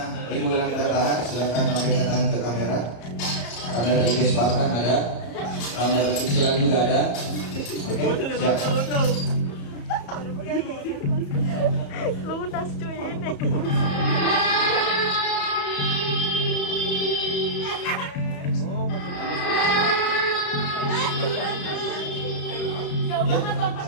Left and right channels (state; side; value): late; right; 34 ms